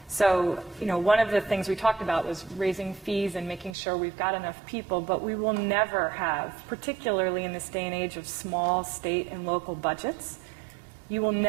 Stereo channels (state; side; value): drops out; left; at 3.8 s